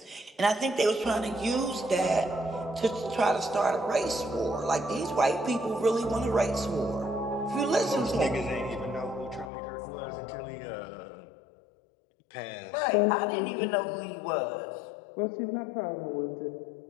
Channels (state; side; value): drops out; right; at 9.5 s